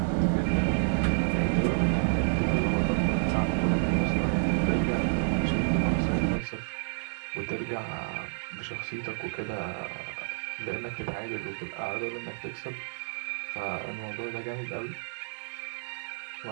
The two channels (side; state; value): left; silent; digital silence